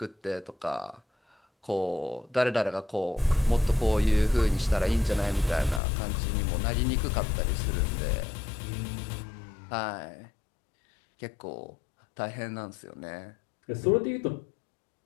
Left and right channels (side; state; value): right; drops out; at 5.8 s